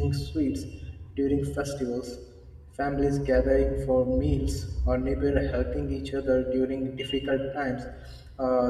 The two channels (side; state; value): both; identical; correlation 1.00